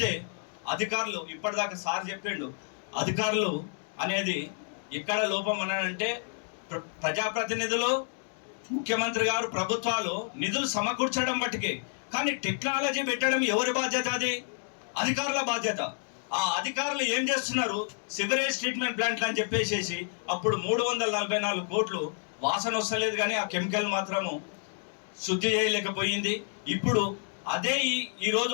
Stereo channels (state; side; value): silent; right; 58 dB below the other